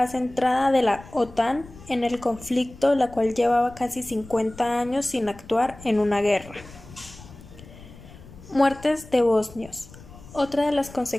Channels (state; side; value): noise; left; rumble, 19 dB below the sound